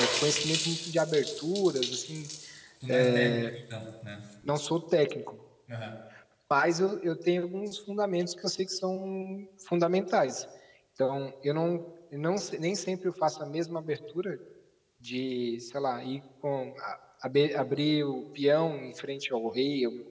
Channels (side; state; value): both; identical; correlation 1.00